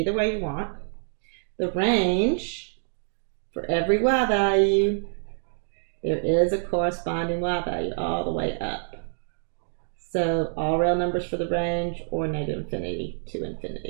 way you want. The range for every y value, there is a corresponding y value all the way up. So all real numbers for the range or negative infinity to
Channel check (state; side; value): silent; left; digital silence